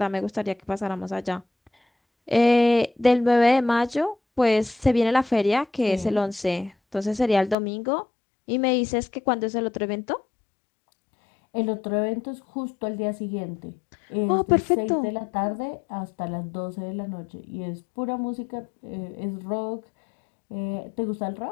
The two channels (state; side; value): drops out; right; at 7.6 s